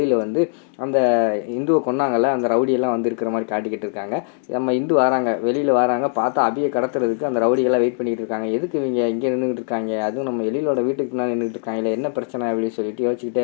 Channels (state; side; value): silent; right; digital silence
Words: வந்து அந்த இந்துவை கொன்னாங்கல்ல, அந்த ரவுடியெல்லாம் வந்து இருக்கிற மாதிரி காட்டிக்கிட்டு இருக்காங்க. நம்ம இந்து வராங்க, வெளியில் வராங்க, பார்த்தா அபியை கடத்துறதுக்கு அந்த ரவுடிகள்லாம் வெயிட் பண்ணிக்கிட்டு இருக்காங்க. எதுக்கு இவங்க இங்கே நின்றுக்கிட்டு இருக்காங்க, அதுவும் நம்ம எழிலோட வீட்டுக்கு பின்னாடி நின்றுட்டு இருக்காங்களே, என்ன பிரச்சனை அப்படின்னு சொல்லிட்டு யோசிச்சுக்கிட்டே